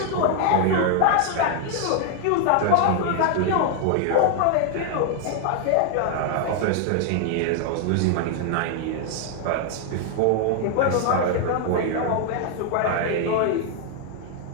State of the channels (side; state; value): both; different; correlation 0.00